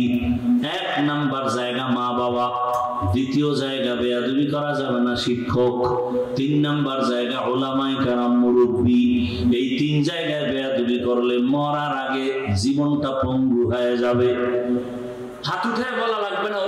1 নাম্বার জায়গা মা বাবা, 2য় জায়গা বেয়াদবি করা যাবে না শিক্ষক, 3 নাম্বার জায়গা উলামায়ে কেরাম মুরব্বি। এই 3 জায়গায় বেয়াদবি করলে মরার আগে জীবনটা পঙ্গু হয়ে যাবে। হাত উঠায় বলা লাগবে না,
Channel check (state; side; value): identical; both; correlation 1.00